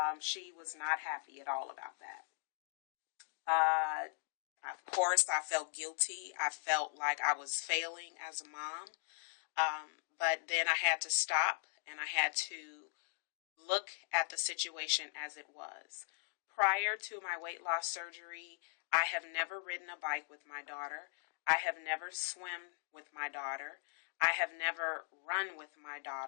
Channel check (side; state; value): right; silent; digital silence